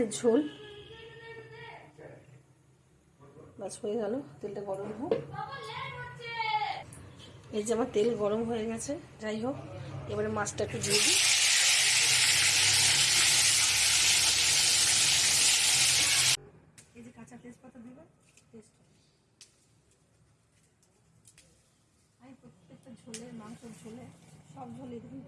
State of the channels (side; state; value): both; identical; correlation 1.00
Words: ঝোল। বাস হয়ে গেল, তেলটা গরম হোক। এই যে আমার তেল গরম হয়ে গেছে, যাই হোক, এবারে মাছটা একটু দিয়ে দিই। এই যে কাঁচা তেজপাতা দেবেন, আমি প্রত্যেকটা ঝোলে, মাংসের ঝোলে, সব ঝোলে দেখুন